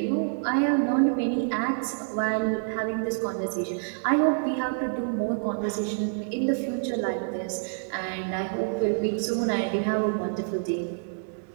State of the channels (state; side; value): silent; left; digital silence